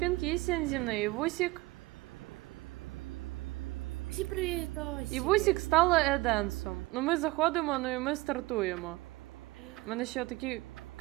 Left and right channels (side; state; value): left; quieter; 21.1 dB